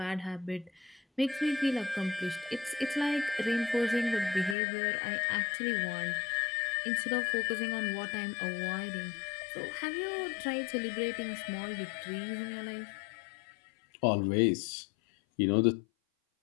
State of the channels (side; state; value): right; drops out; at 4.5 s